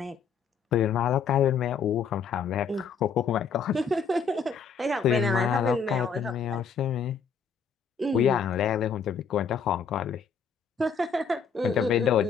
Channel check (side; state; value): right; quieter; 6.0 dB